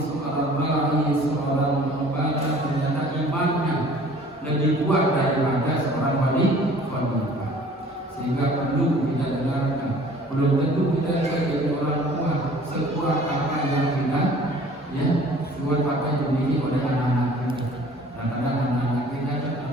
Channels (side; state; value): both; normal; correlation 0.50